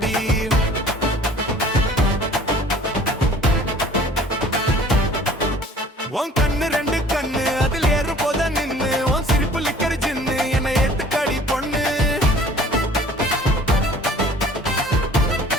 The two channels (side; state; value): both; normal; correlation 0.51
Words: உன் கண்ணு ரெண்டு கண்ணு அதில் ஏறும் போத நின்னு உன் சிரிப்பு லிக்கற ஜின்னு என்னை ஏத்துக்கடி பொண்ணு